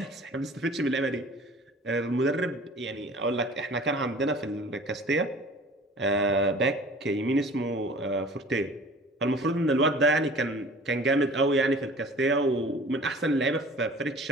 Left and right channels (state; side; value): normal; both; correlation 0.46